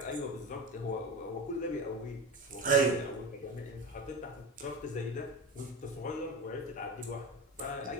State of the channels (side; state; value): both; normal; correlation 0.25